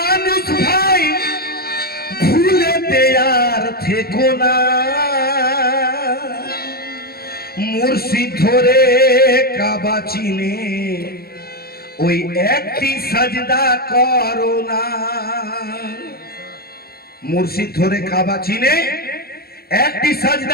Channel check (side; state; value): right; late; 0.45 ms